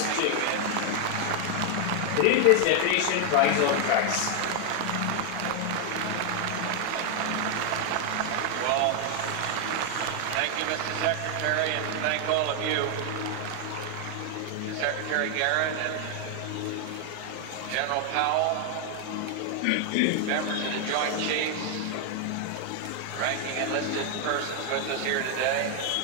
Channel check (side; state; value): both; different; correlation 0.00